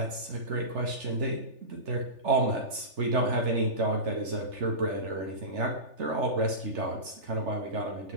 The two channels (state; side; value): late; left; 3.4 ms